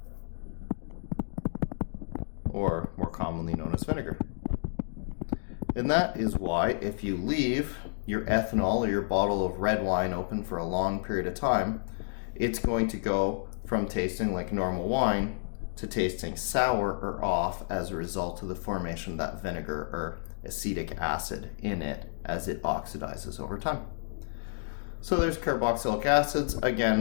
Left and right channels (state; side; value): silent; right; digital silence